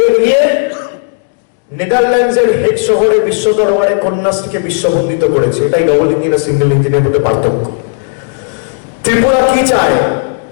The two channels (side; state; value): right; silent; digital silence